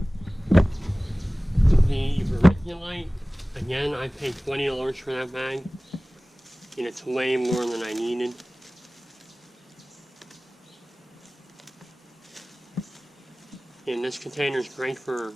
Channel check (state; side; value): normal; both; correlation 0.98